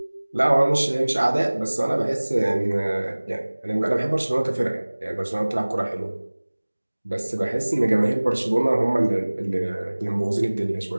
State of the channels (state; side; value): inverted; both; correlation -1.00